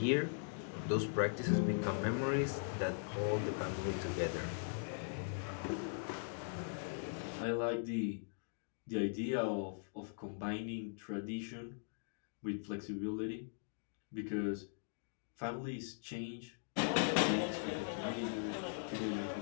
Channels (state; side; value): silent; right; digital silence